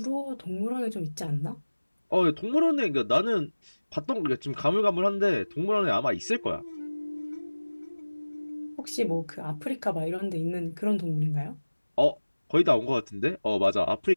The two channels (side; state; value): both; inverted; correlation -1.00